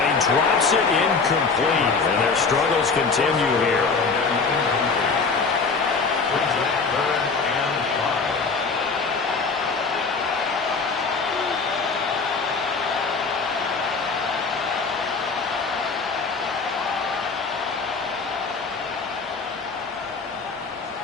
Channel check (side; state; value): right; quieter; 4.6 dB